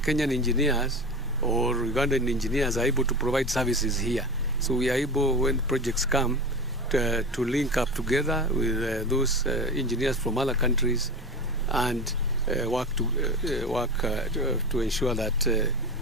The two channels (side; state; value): both; normal; correlation 0.27